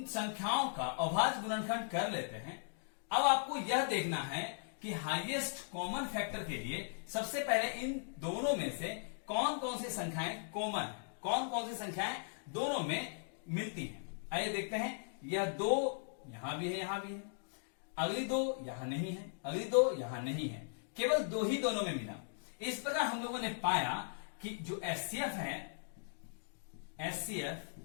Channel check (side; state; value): right; silent; digital silence